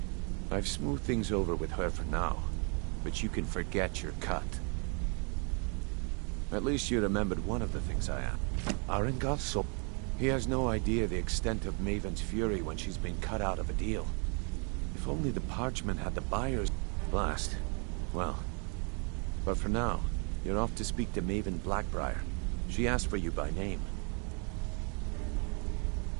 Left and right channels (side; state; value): left; quieter; 37.4 dB